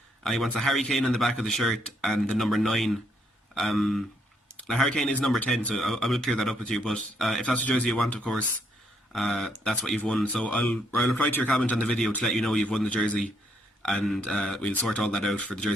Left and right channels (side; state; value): both; normal; correlation 0.73